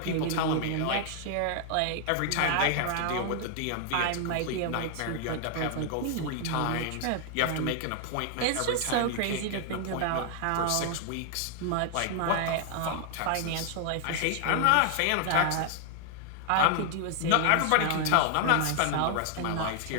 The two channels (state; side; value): different; both; correlation 0.00